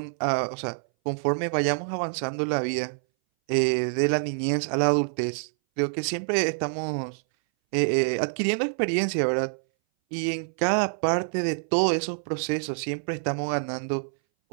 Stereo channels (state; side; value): silent; left; 60 dB below the other